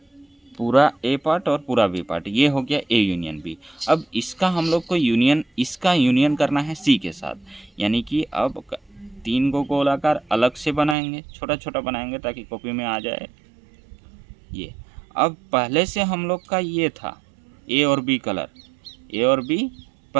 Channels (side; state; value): left; drops out; at 11.0 s